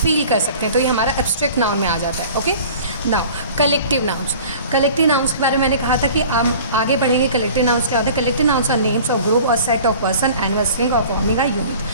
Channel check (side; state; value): both; inverted; correlation -0.45